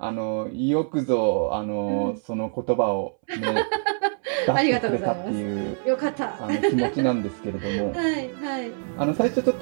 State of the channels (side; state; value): left; silent; 62 dB below the other